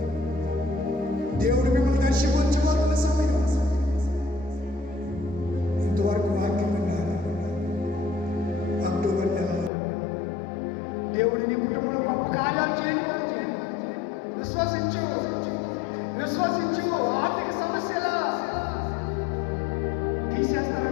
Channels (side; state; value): right; drops out; at 9.7 s